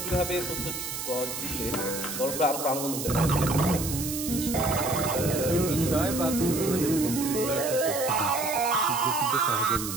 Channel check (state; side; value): noise; right; hiss, 6 dB below the sound